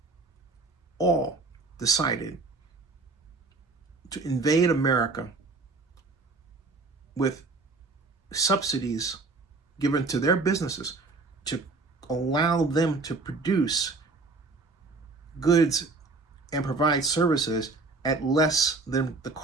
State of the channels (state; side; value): quieter; left; 3.7 dB